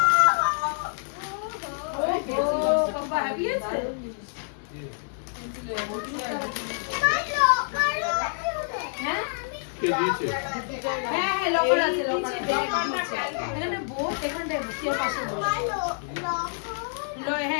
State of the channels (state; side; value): silent; right; 60 dB below the other